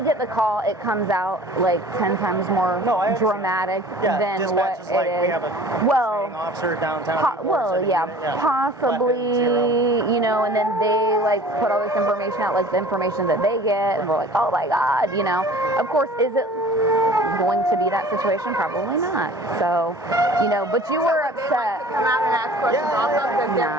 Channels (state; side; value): normal; both; correlation 0.46